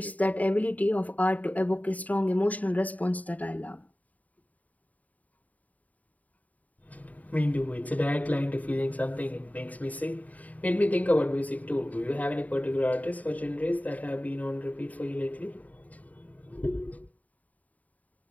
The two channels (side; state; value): right; late; 0.073 ms